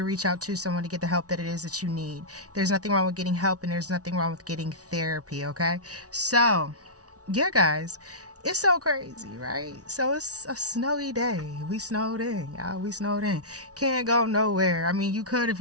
reach out to someone to get the help that it is that you need. There's nothing wrong with getting help and there's nothing wrong with getting therapy, okay? So, yeah, guys, it's so crazy, right? So it's a snowy day. We snowed in, y'all. We snowed in. Can't go nowhere. I mean, you could if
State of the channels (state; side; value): late; left; 0.68 ms